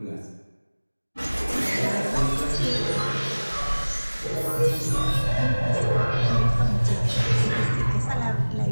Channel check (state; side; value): inverted; both; correlation -1.00